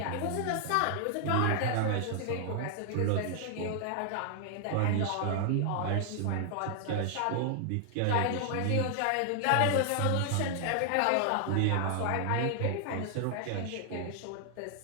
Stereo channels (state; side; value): different; both; correlation 0.00